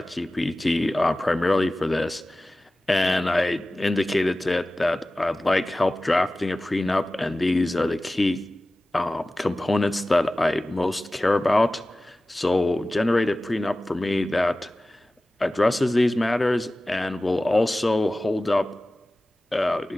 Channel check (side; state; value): both; normal; correlation 0.97